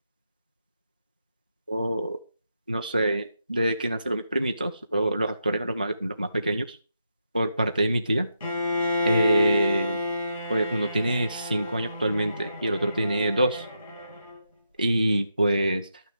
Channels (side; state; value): both; inverted; correlation -0.83